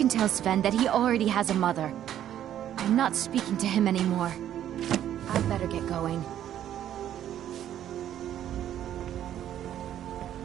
tell Sven that he already has a mother. I'm not speaking to him anymore. I'd better get going.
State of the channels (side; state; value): left; quieter; 11.1 dB